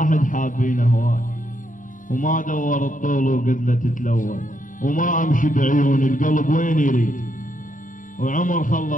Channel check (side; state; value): right; late; 0.38 ms